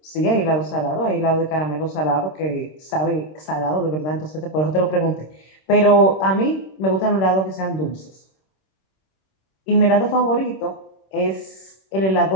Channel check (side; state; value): right; late; 26 ms